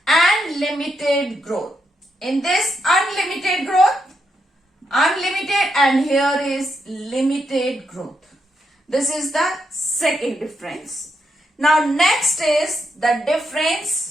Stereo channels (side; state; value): both; normal; correlation 0.81